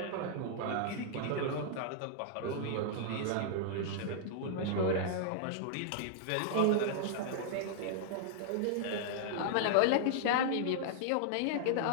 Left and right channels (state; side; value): different; both; correlation -0.01